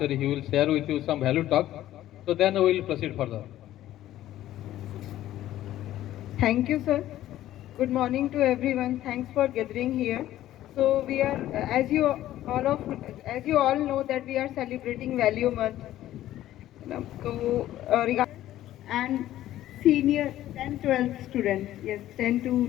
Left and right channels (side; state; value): right; quieter; 13.7 dB